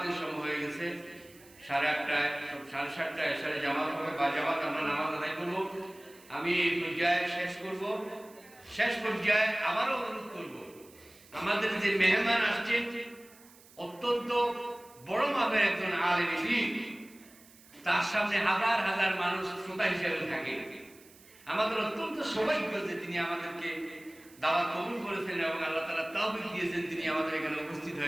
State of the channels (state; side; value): noise; right; hiss, 24 dB below the sound